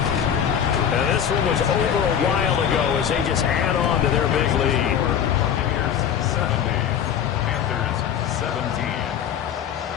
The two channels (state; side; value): quieter; right; 8.8 dB